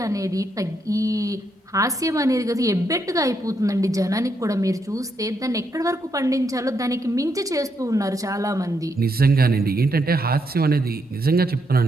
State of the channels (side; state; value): both; normal; correlation 0.78